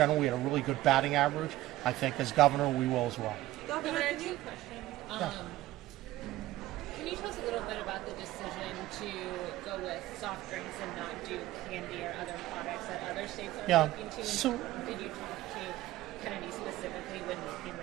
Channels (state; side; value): quieter; left; 16.1 dB